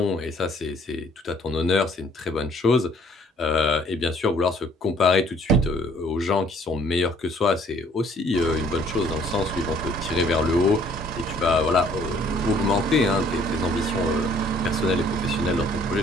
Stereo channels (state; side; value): normal; both; correlation 0.60